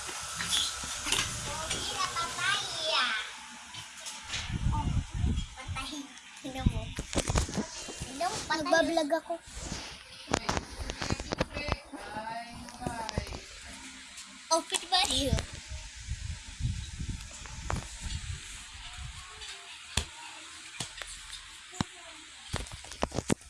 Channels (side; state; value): both; identical; correlation 1.00